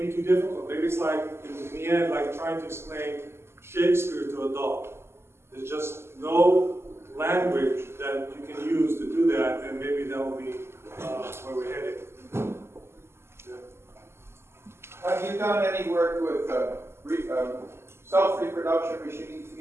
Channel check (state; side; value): late; left; 0.12 ms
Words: be too difficult. Maybe it's like, in the end, like trying to explain Shakespeare to a dog. There's just no language that you can use to do that, and maybe that will be where we're headed. Yeah. Have you done any work with self-reproduction machines,